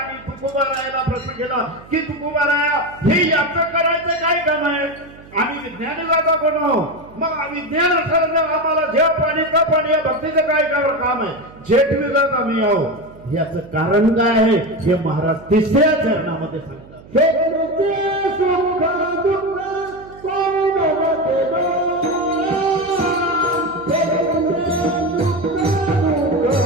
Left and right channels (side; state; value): right; noise; hum, 21 dB below the sound